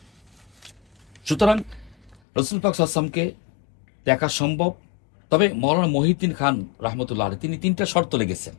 সুতরাং রসুল পাক সাল্লাল্লাহু আলাইহি ওয়াসাল্লামকে দেখা সম্ভব। তবে মৌলানা মহিউদ্দিন খান রাহমাতুল্লাহ আলাইহি তিনি 3টা শর্ত লেগেছেন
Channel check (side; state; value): right; drops out; at 2.2 s